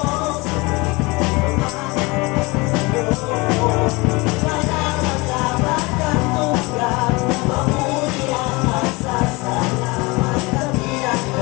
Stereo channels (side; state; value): right; quieter; 24.9 dB